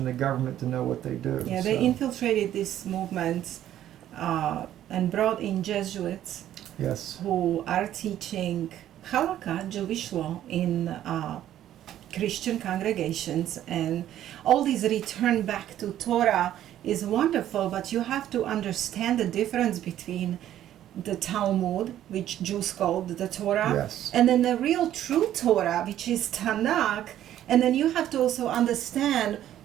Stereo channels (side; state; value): left; quieter; 11.9 dB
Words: the government to know what they do. Yeah, they infiltrated this movement and brought in Jesuits. Yes. Who are teaching Halakha, Jewish law, in Christian congregations, and all this return back to Torah is wonderful, but you have to understand the difference between the Talmud, which Jews called the Torah, and then the real true Torah, which is Tanakh, And then you have to also understand